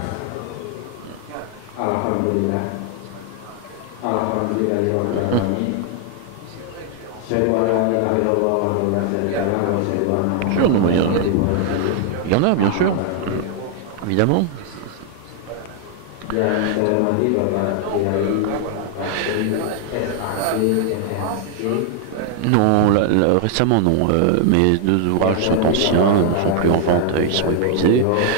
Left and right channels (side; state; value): both; different; correlation 0.00